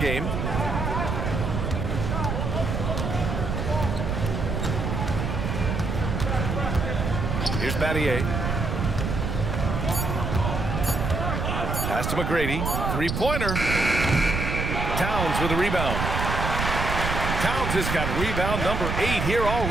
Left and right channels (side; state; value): right; noise; rumble, 2 dB below the sound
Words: Here's Battier. Pass to McGrady. 3-pointer. Towns with a rebound. Towns has got rebound number 8 here